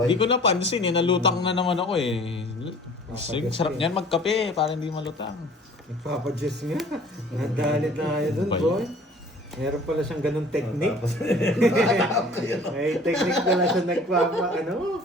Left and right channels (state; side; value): normal; both; correlation 0.49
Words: Hindi ko napansin eh. Nalutang na naman ako eh. Sige, sarap niyan magkape para hindi malutang. Nagpapadyos nga. Nadalit na kayo dun, Ba boy. Meron pala siyang ganung technique. Tapos, May technique pala siya nagpapa, ano?